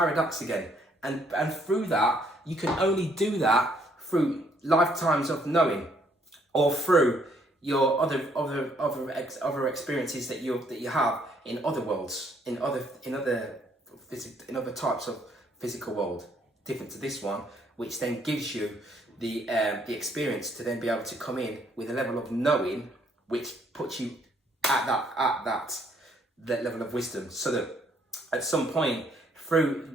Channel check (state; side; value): normal; both; correlation 0.67